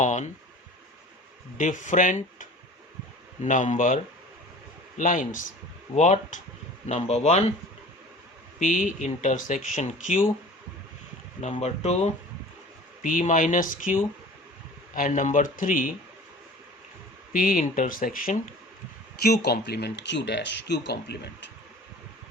different number lines. What? Number 1, P intersection Q, number 2, P minus Q, and number 3, P intersection Q complement, Q dash, Q complement.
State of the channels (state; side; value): normal; both; correlation 0.42